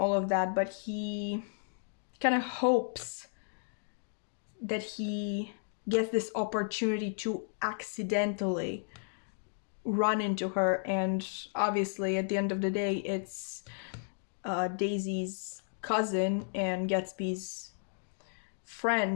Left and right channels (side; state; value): right; silent; digital silence